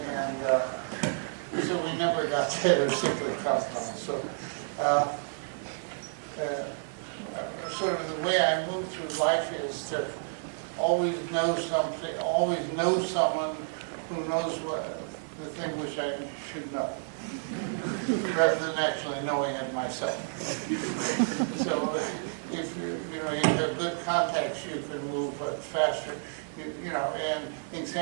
And so we never got together cyclic compounds. So sort of the way I move through life is to always know something, always know someone who knows what the thing which I should know, rather than actually knowing it myself. So if you have good contacts, you can move faster. You know, and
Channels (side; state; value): left; silent; 58 dB below the other